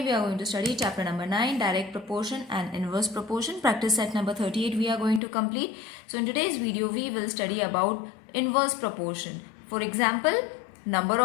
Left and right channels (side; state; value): right; drops out; at 5.2 s